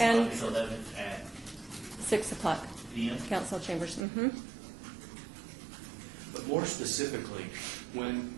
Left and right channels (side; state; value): left; drops out; at 4.0 s